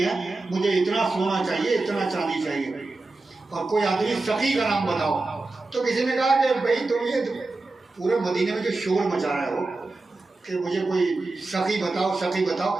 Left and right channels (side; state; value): left; quieter; 3.3 dB